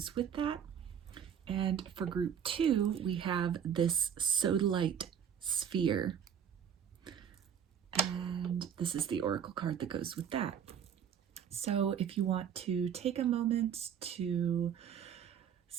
with that. And for group 2 we have this Sodalite sphere, and this is the oracle card that goes with that. So if you want to take a moment to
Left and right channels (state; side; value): quieter; left; 8.3 dB